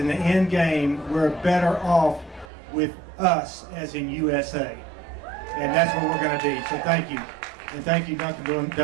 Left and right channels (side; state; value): left; drops out; at 2.5 s